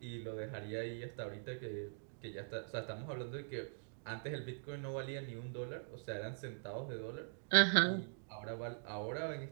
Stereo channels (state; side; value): silent; left; digital silence